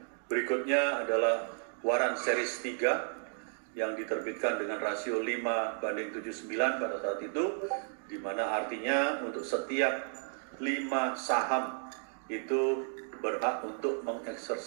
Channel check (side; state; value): left; silent; 56 dB below the other